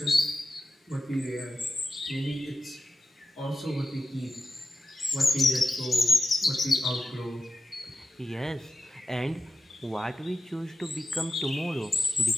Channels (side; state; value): both; normal; correlation 0.91